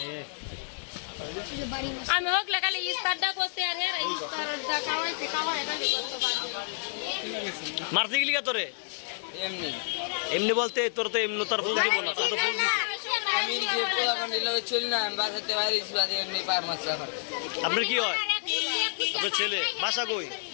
আমি হোকলে খালি ইস্তারটা করতে আর ইস্তারটা খাওয়াইতে খাওয়াই খালি মারতে গেলি কা তোরে এমনি এমনি বলতে তোর তো এমনি তার ফুল দিব না তোর তো ফুল দিছে আমি যে পোলাপান দিলে চলি না আমি বাসাতে বাইরে বাদে এমনি পার মাছ আমার আপনার কি হয় আপনার ছেলে বাসা কই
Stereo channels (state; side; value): silent; right; digital silence